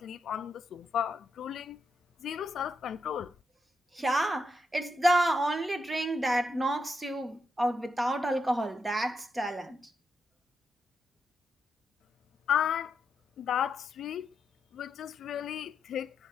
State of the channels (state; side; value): normal; both; correlation 0.83